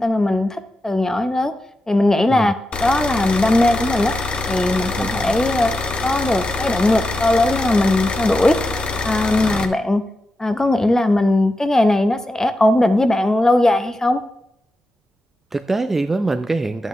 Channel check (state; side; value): normal; both; correlation 0.89